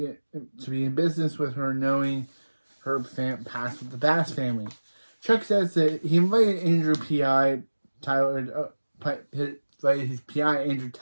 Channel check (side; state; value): both; inverted; correlation -1.00